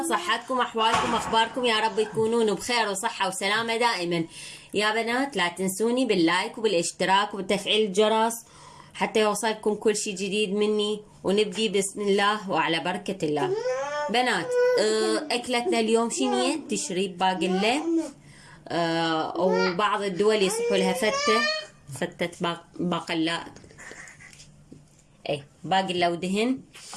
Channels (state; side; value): identical; both; correlation 1.00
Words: صحتكم، أحوالكم، أخباركم؟ يا رب تكونون بخير وصحة وسلامة دائما. يا بنات لا تنسوني باللايك وبالاشتراك وبتفعيل الجرس حتى يوصلكم كل شيء جديد مني. ونبدي بسم الله وعلى بركة الله. بنات أكلتنا اليوم شنية؟ تشريب باقلة. وبعض الدول يصحوا لها فتة باقلة، باقلة ودهن.